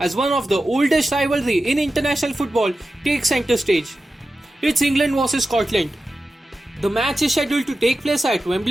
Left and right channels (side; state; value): both; normal; correlation 0.93